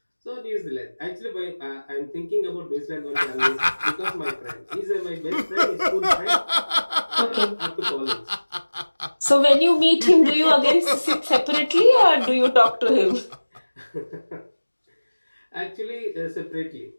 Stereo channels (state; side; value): inverted; both; correlation -1.00